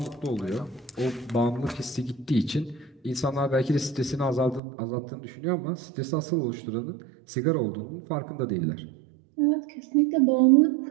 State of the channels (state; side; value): drops out; left; at 4.6 s